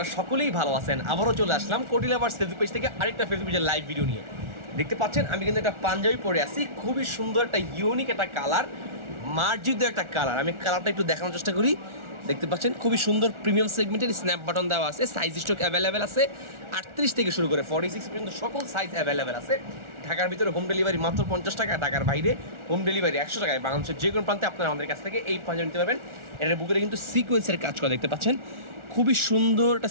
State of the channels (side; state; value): left; late; 1.4 ms